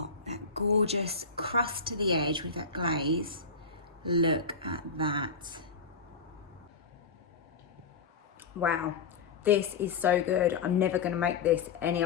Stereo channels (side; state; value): right; quieter; 4.7 dB